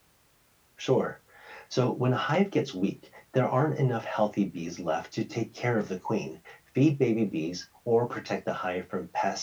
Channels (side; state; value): both; identical; correlation 1.00